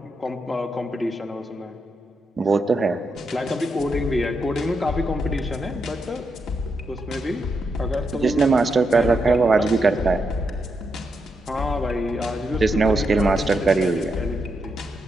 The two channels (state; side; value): normal; both; correlation 0.83